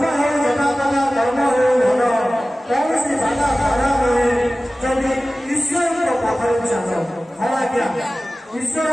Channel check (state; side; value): normal; both; correlation 0.96